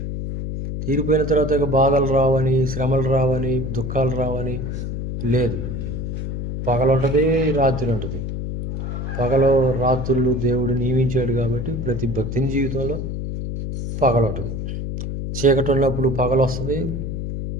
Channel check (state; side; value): noise; left; hum, 4 dB below the sound